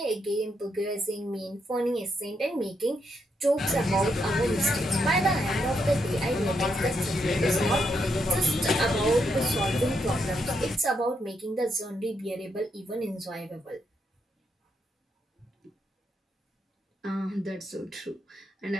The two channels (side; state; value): both; normal; correlation 0.79